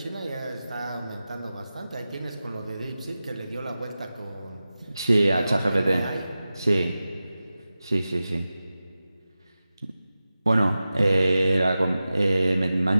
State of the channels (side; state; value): both; inverted; correlation -0.94